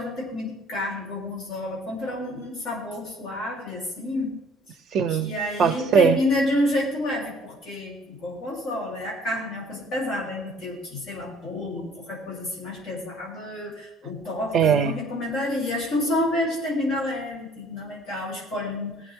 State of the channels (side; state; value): both; normal; correlation 0.55